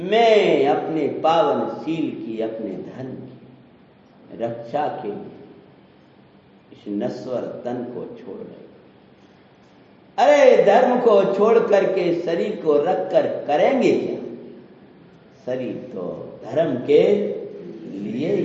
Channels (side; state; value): both; identical; correlation 1.00